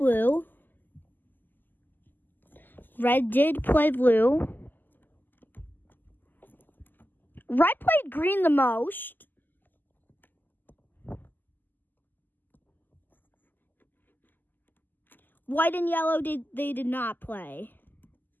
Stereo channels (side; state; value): right; late; 0.089 ms